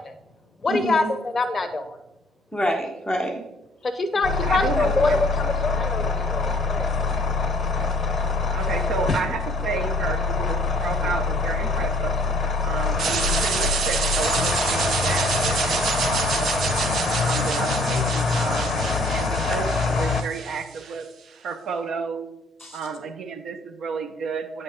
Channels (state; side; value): normal; both; correlation 0.57